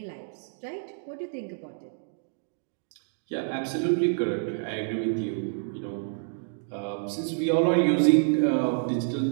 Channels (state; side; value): silent; left; digital silence